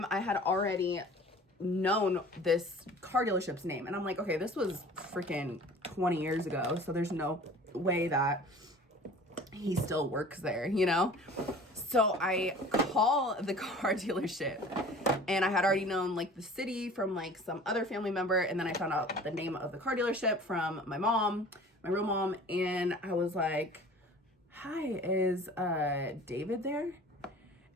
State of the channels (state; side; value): normal; both; correlation 0.44